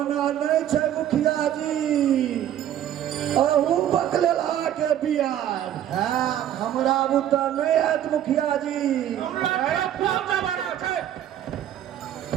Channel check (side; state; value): left; quieter; 11.2 dB